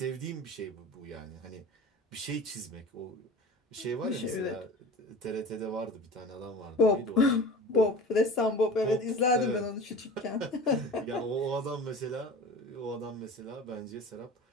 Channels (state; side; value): normal; both; correlation 0.36